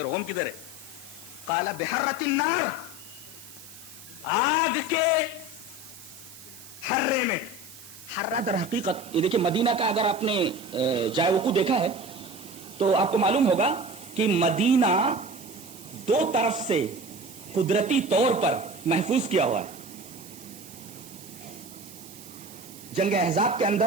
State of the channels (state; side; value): noise; right; hiss, 18 dB below the sound